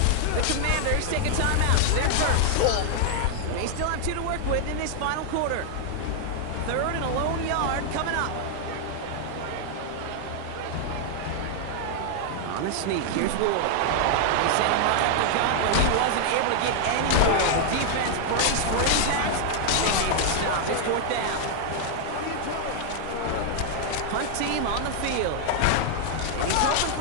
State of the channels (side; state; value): both; different; correlation 0.00